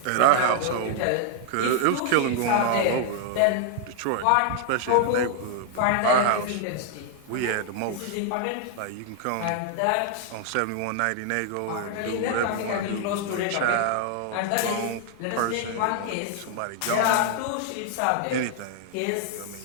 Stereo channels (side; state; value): both; different; correlation 0.00